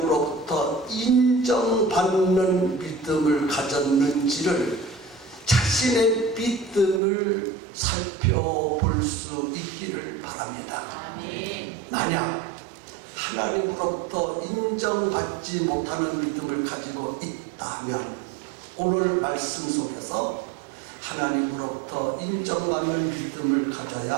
인정받는 믿음을 가졌는지를, 자신의 믿음을 살펴볼 수 있기를 바랍니다. 만약 하나님으로부터 인정받지 못하는 믿음을 가지고 있다면 오늘 말씀 속에서 하나님으로부터 인정받는 믿음을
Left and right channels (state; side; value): drops out; left; at 7.0 s